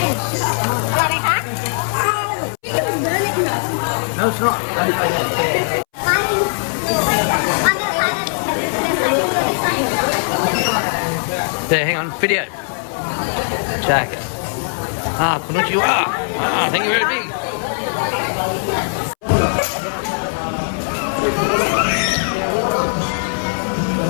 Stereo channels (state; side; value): silent; right; 67 dB below the other